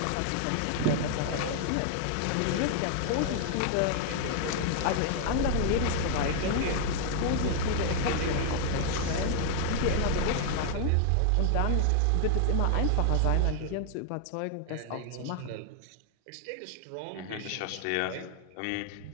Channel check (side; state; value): both; different; correlation 0.00